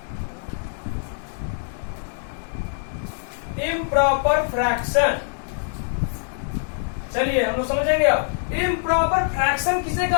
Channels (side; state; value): right; silent; digital silence